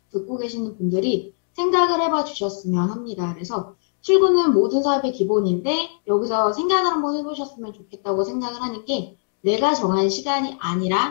듣고 계시는 분들이 생각을 해봐 주셨으면 합니다. 그래서 출근은 모든 사업의 기본인데 여기서 생각을 한번 해보셨으면 좋겠다고 생각을 하는 게 내가 정한 시간이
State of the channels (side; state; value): right; silent; digital silence